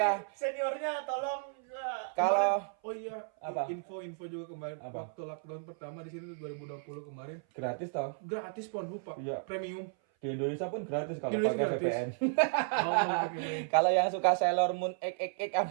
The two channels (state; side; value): silent; left; 55 dB below the other